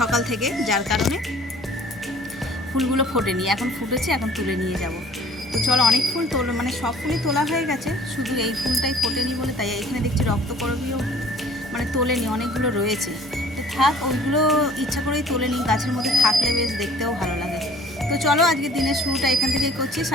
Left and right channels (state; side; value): normal; both; correlation 0.52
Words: থেকে, যার কারণে ফুলগুলো ফোটেনি। এখন ফুটেছে, এখন তুলে নিয়ে যাব। তো চলো, অনেক ফুল মানে সব ফুলই তোলা হয়ে গেছে, শুধু এই ফুলটাই ফোটেনি বলে তাই এখানে দেখছি রক্তকরবীও মানে তোলেনি, অনেকগুলো রয়েছে। তো থাক, ওইগুলো ইচ্ছা করেই তোলেনি, গাছের মধ্যে থাকলে বেশ দেখতেও ভালো লাগে। তো চলো, আজকে দিনের শুরুটা এখান থেকেই করছি।